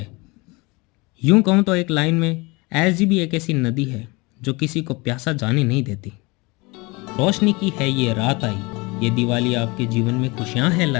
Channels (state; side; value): quieter; right; 25.6 dB